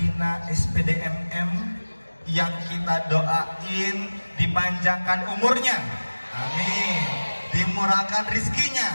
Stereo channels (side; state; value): both; inverted; correlation -1.00